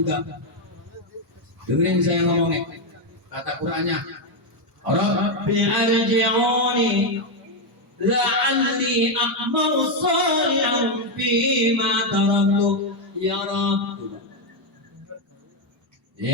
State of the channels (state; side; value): normal; both; correlation 0.04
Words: juga. Dengerin saya ngomongnya. Kata Qurannya, Rabbi arji'uni la'alli a'malu shalihan fima taraktu ya Rabb.